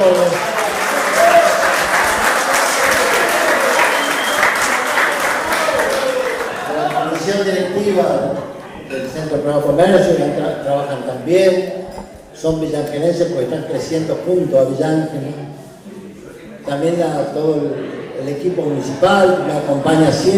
La comisión directiva del Centro Prado Comercio trabajan también, son villangelenses porque están creciendo junto a Villángel. También a todo el equipo municipal que me acompaña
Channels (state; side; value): identical; both; correlation 1.00